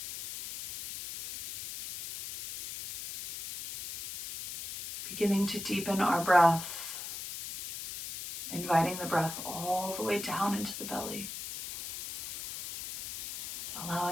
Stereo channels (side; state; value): left; noise; hiss, 8 dB below the sound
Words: Beginning to deepen our breath, inviting the breath all the way down into the belly,